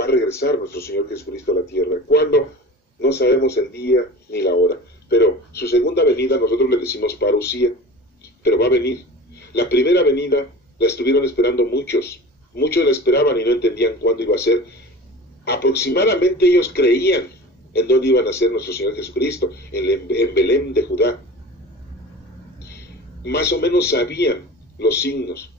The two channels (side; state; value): both; normal; correlation 0.36